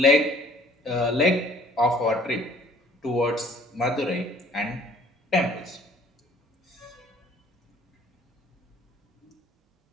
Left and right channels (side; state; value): both; normal; correlation 0.57